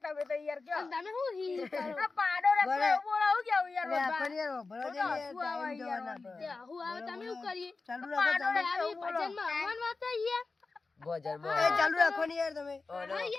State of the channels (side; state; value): right; quieter; 3.9 dB